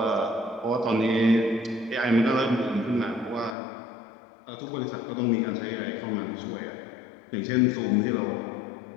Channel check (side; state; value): right; drops out; at 3.6 s